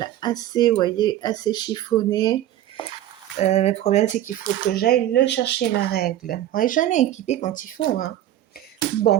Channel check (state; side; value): quieter; left; 12.8 dB